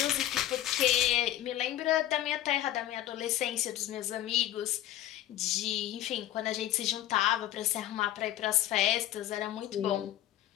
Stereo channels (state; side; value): quieter; right; 13.2 dB